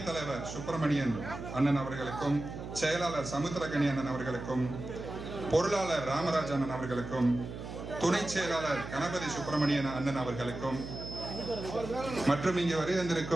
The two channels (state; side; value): noise; right; hum, 9 dB below the sound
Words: தலைவர் சுப்பிரமணியன் அண்ணன் அவர்களுக்கும் செயலாளர் சமுத்திரகனி அண்ணன் அவர்களுக்கும் பொருளாளர் ராமராஜ் அண்ணன் அவர்களுக்கும் துணை செயலாளர் கணபதி சுப்பிரமணியன் அண்ணன் அவர்களுக்கும் மற்றும் இங்கே வருகை